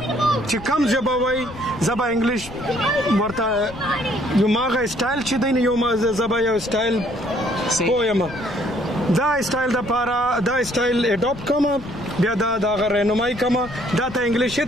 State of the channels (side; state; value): left; noise; rumble, 15 dB below the sound